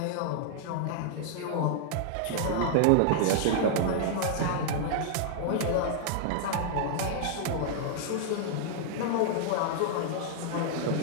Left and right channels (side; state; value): both; different; correlation -0.01